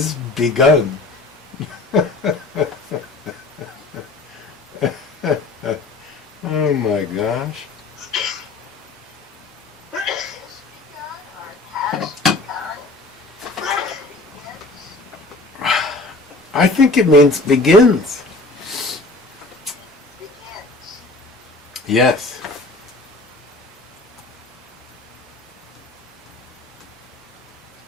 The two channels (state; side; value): quieter; right; 3.0 dB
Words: begun. Oh my gosh. Is begun or has begun? Begins? I think it means begins. Begins. Yes.